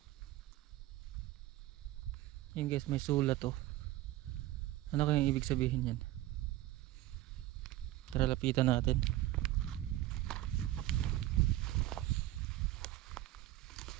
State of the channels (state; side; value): quieter; left; 15.6 dB